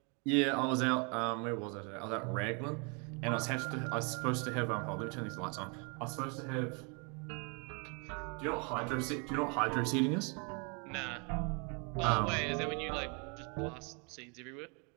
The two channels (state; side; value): quieter; left; 33.9 dB